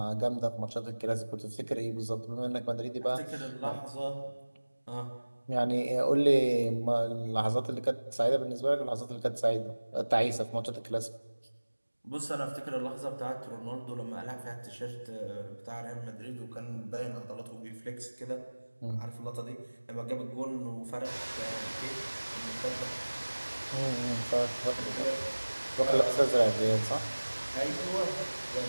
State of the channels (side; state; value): both; inverted; correlation -1.00